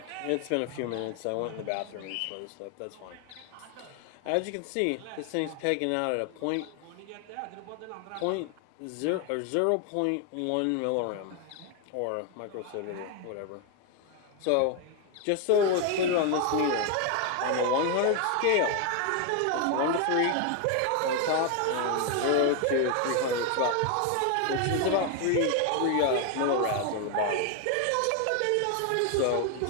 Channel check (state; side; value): different; both; correlation 0.01